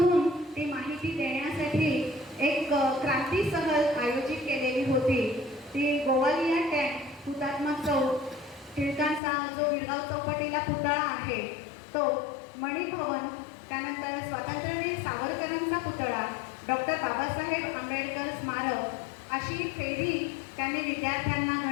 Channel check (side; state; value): right; drops out; at 9.2 s